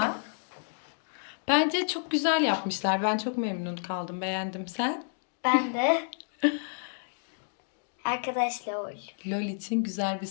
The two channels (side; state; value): right; silent; digital silence